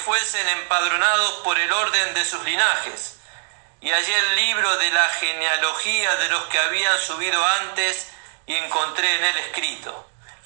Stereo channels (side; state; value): left; silent; digital silence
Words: empadronados por el orden de sus linajes. Y hallé el libro de la genealogía de los que habían subido antes y encontré en él escrito.